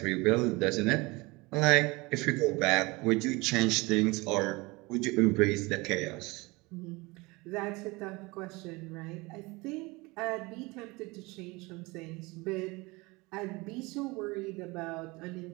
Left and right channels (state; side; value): quieter; left; 24.2 dB